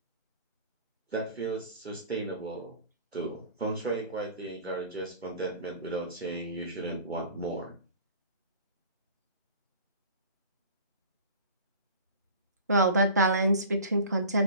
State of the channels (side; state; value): both; inverted; correlation -0.42